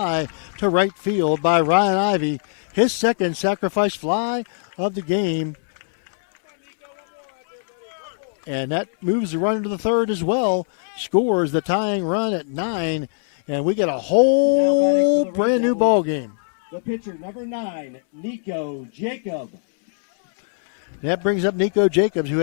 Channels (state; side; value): silent; right; 65 dB below the other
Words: to right field by Ryan Ivy. His second sacrifice fly of the game. And that moves the runner to the third as well. Scores the tying run at 9. And we get a whole brand new ball game. The pitcher, number 9, Nico Jacob. That brings up Nico Jacobs, who